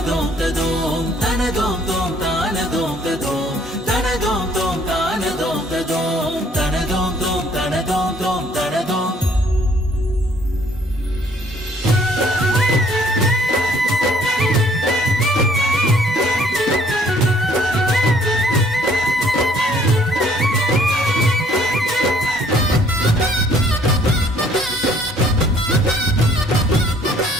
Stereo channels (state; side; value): normal; both; correlation 0.61